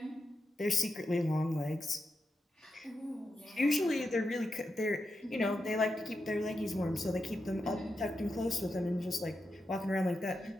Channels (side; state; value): both; normal; correlation 0.87